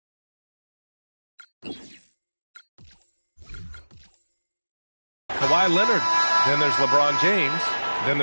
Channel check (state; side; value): inverted; both; correlation -1.00